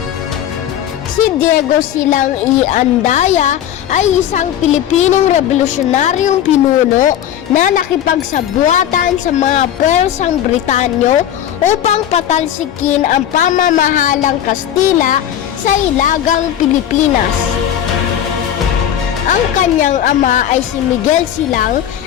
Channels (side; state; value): right; quieter; 10.5 dB